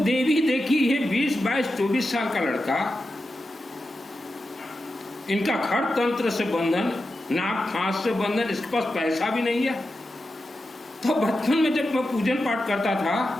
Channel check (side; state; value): both; normal; correlation 0.90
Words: देवी देखी ये 20, 22, 24 साल का लड़का, इनका खड़ तंत्र से बंधन, नाक फांस से बंधन, इसके पास पैसा भी नहीं है। तो बचपन में जब मैं पूजन पाठ करता था,